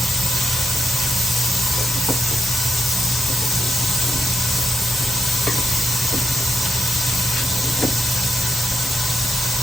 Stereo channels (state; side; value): normal; both; correlation 0.83